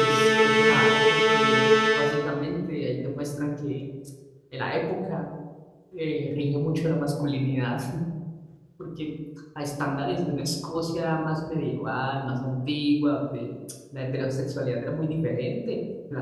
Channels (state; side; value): identical; both; correlation 1.00